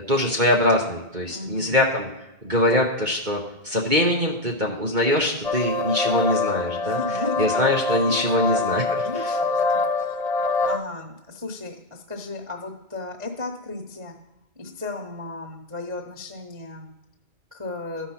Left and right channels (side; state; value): left; late; 2.2 ms